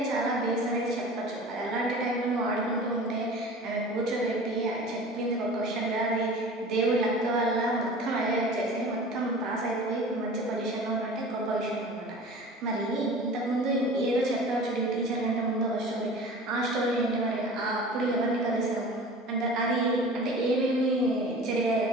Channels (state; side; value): normal; both; correlation 0.40